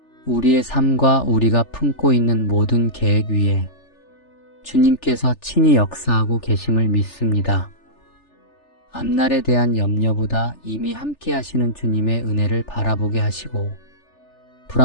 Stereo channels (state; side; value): late; right; 3.4 ms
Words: 우리의 삶과 우리가 품고 있는 모든 계획 위에 주님께서 친히 역사하고 계심을 믿습니다. 앞날에 대한 염려보다 이미 함께 하시는 주님의 은혜를 바라보게 하시고